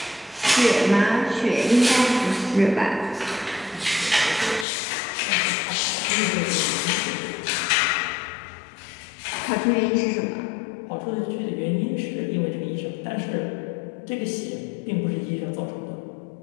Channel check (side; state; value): right; drops out; at 4.7 s